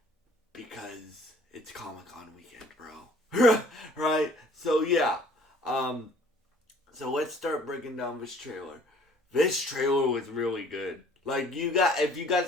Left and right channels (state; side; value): normal; both; correlation 0.55